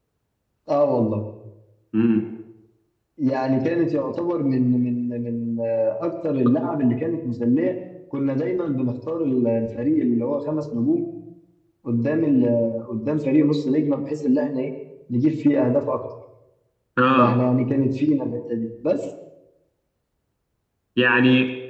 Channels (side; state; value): both; identical; correlation 1.00